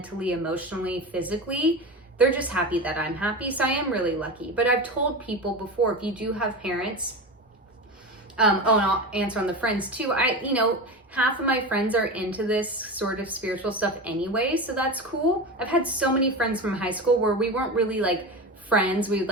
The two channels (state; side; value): normal; both; correlation 0.25